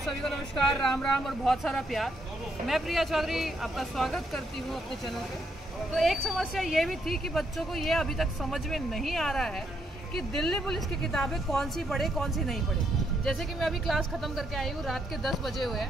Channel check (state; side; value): normal; both; correlation 0.76